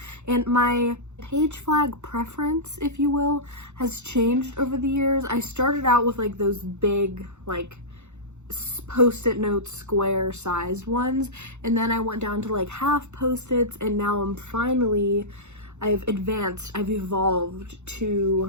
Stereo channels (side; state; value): left; late; 0.83 ms